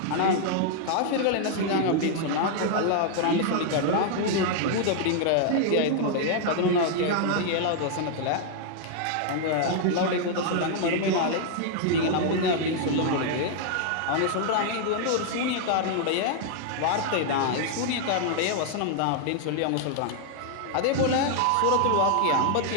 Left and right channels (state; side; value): different; both; correlation 0.00